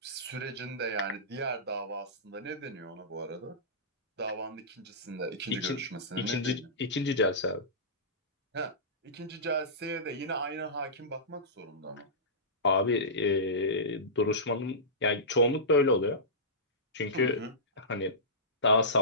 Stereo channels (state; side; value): normal; both; correlation -0.19